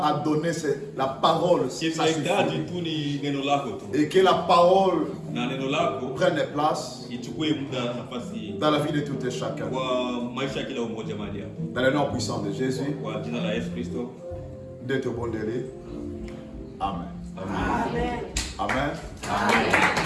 à donner, c'est la parole, ça suffit. Et que la parole prenne place dans la vie de tout et chacun. Dans le nom puissant de Jésus, d'être bon délai. Amen. Amen. Amen. Amen.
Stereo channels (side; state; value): both; identical; correlation 1.00